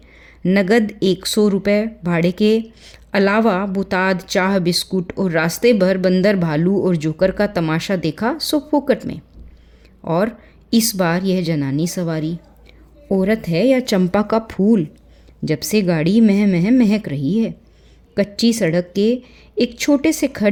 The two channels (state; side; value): identical; both; correlation 1.00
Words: नगद 100 रुपये भाड़े के अलावा बुताद, चाह, बिस्कुट और रास्ते भर बंदर, भालू और जोकर का तमाशा देखा सो फोकट में। और इस बार यह जनानी सवारी औरत है या चंपा का फूल, जब से गाड़ी मह मह महक रही है। कच्ची सड़क के एक छोटे से